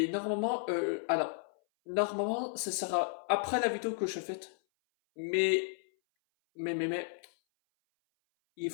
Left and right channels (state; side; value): silent; right; 56 dB below the other